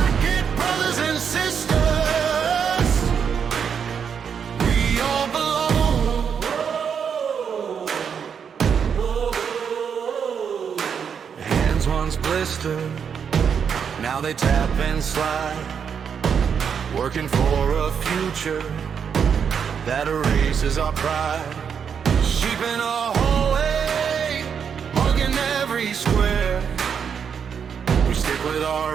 it, brothers and sisters. We all belong. Hands once blistered, now they tap and slide, working for a future that erases our pride. Sheep in a hallway, hugging every square. We stick with our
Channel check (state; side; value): quieter; left; 7.1 dB